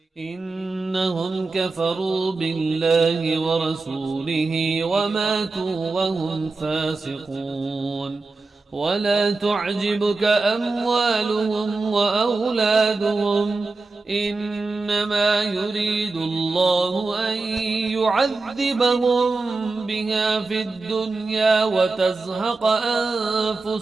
إنهم كفروا بالله ورسوله وماتوا وهم فاسقون. ولا تعجبك أموالهم وأولادهم إنما يريد الله أن يعذبهم بها في الدنيا وتزهق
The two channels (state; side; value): quieter; left; 3.7 dB